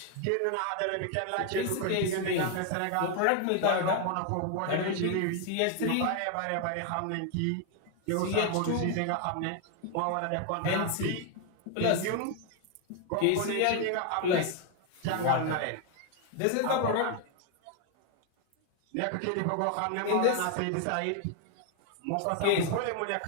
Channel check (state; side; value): different; both; correlation 0.01